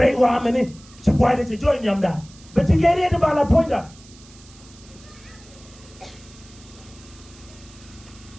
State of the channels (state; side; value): noise; right; hiss, 23 dB below the sound